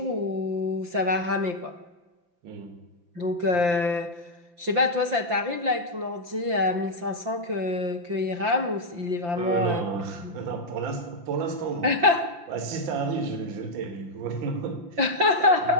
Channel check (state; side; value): late; left; 5.8 ms